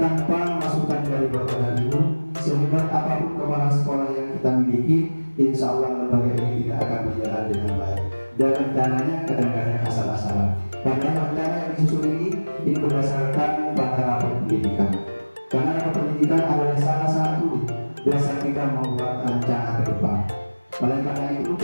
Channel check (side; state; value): both; inverted; correlation -1.00